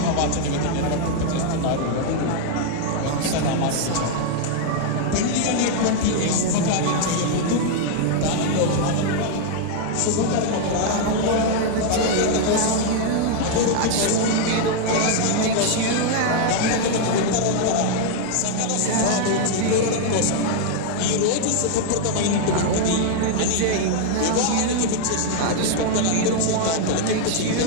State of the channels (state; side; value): different; both; correlation 0.00